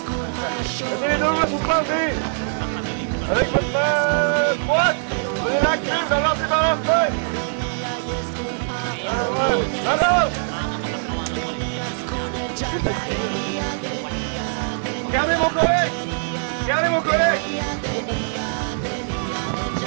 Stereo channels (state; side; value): silent; left; digital silence